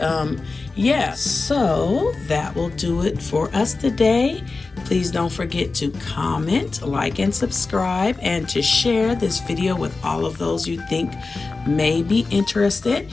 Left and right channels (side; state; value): right; quieter; 3.9 dB